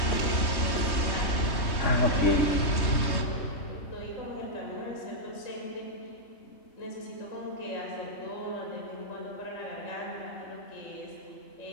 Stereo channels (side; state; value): right; late; 3.2 ms